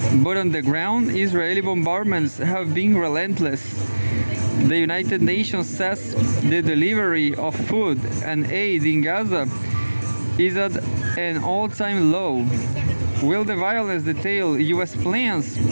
But on the ground, Israeli bombardments have been relentless. The United Nations says the delivery of food and aid in Gaza is at an all-time low. Will the violence detail U.S. plans?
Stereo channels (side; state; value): both; inverted; correlation -1.00